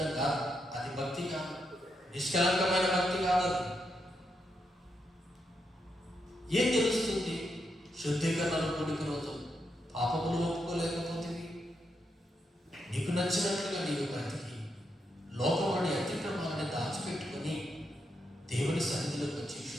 కాదు. అది భక్తి కాదు, నిష్కలంకమైన భక్తి కాదు. అది ఏం తెలుస్తుంది? శుద్ధీకరణలో కూడిక రోజు పాపములు ఒప్పుకోలేకపోతే నీకు నచ్చినట్లుగా నీవు బ్రతికి లోకంలోని అతిక్రమాలని దాచిపెట్టుకొని దేవుని సన్నిధిలోకి వచ్చి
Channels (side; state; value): both; normal; correlation 0.82